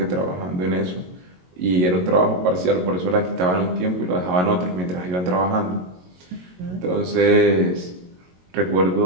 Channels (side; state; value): left; late; 22 ms